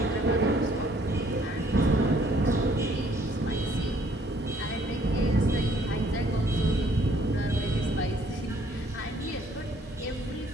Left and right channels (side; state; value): both; normal; correlation 0.63